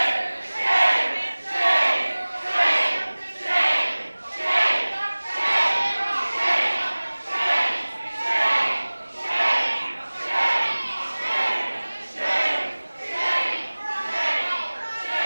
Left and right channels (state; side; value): inverted; both; correlation -1.00